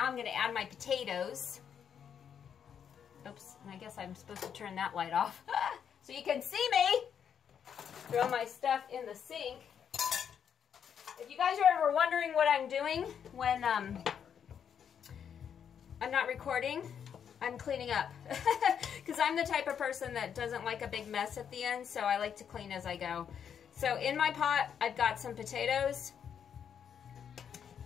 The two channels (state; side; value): quieter; right; 8.0 dB